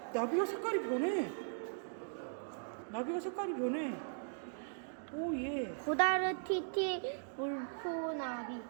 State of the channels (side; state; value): left; silent; digital silence